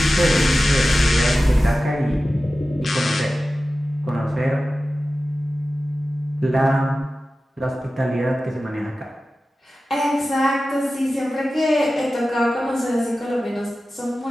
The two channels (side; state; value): both; normal; correlation 0.95